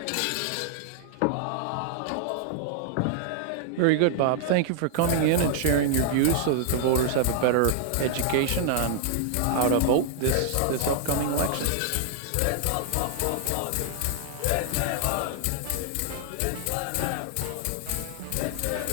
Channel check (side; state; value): both; different; correlation -0.01